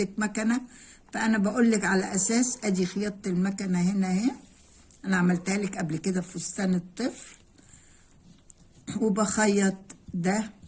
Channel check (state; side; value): identical; both; correlation 1.00